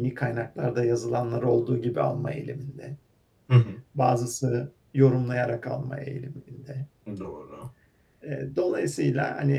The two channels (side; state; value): both; identical; correlation 1.00